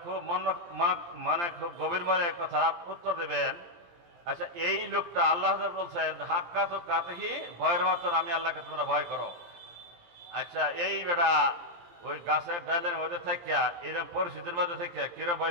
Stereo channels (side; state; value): left; late; 17 ms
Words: খুব মানে খুব গভীর মনে কথা উত্তর দেবেন। আচ্ছা, এই লোকটা আল্লাহ বলছেন হাক্কা তো কাতেহি, ভয়ের মতন আমি আল্লাহকে তোমরা ভয় করো। আচ্ছা, এই বেটা ওই গাছের ডালের মধ্যে থাকিয়া এরকম পরিস্থিতির মধ্যে থাকিয়া কিরম ভয়